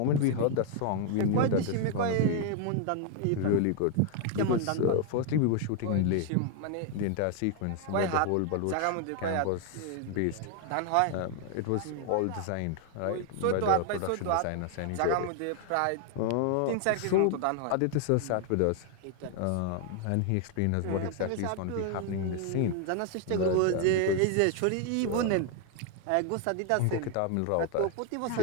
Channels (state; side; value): different; both; correlation 0.00